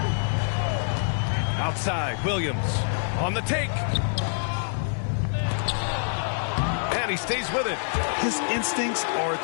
Outside, Williams on the take. And he stays with it. His instincts are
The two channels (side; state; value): right; silent; digital silence